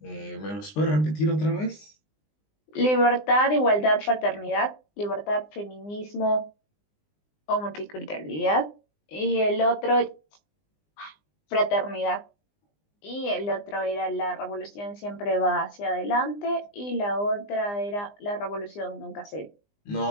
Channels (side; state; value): right; late; 20 ms